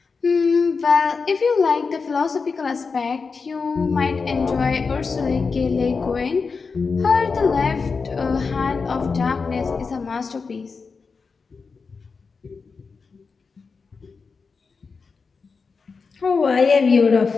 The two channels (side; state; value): right; quieter; 4.8 dB